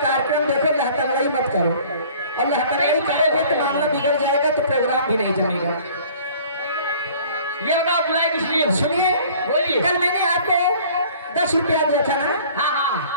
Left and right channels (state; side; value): inverted; both; correlation -0.50